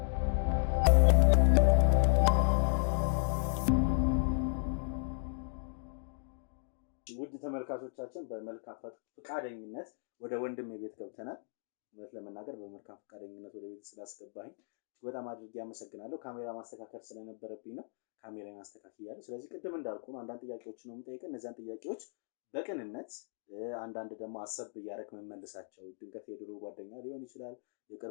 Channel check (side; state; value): right; silent; digital silence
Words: ውድ ተመልካቾቻችን በመልካም ፈቃደኝነት ወደ ወንድሜ ቤት ገብተናል። እውነት ለመናገር በመልካም ፈቃደኝነት ወደ ቤት ስላስገባኝ በጣም አድርጌ አመሰግናለሁ። ካሜራ ማስተካከል ስለነበረብኝ ነው ካሜራን አስተካክያለሁ። ስለዚህ ቅድም እንዳልኩ ነው አንዳንድ ጥያቄዎች ነው የምጠይቀው። እነዛን ጥያቄዎች በቅንነት አንዳንድ ደግሞ አሰብ እያደረክ መመልሳቸው ድንገት የድሮ ጓደኛ ሊሆን ይችላል፣